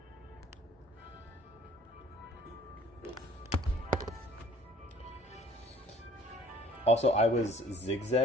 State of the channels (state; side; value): normal; both; correlation 0.53